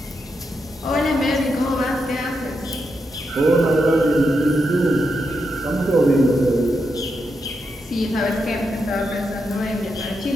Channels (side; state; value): both; normal; correlation 0.84